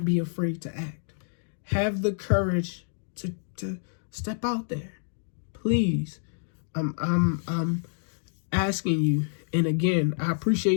be afraid to act. Have the courage to step out there. Please. I'm asking you. And again, I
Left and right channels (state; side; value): silent; right; digital silence